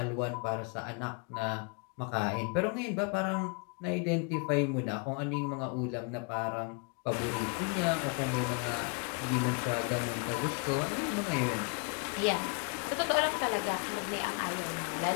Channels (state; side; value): quieter; right; 33.4 dB